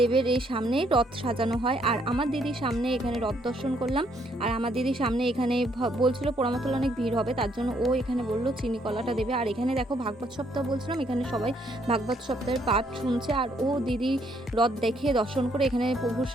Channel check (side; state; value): both; normal; correlation 0.70